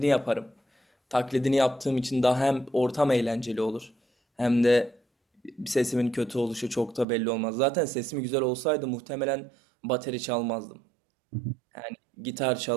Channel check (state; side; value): drops out; left; at 7.1 s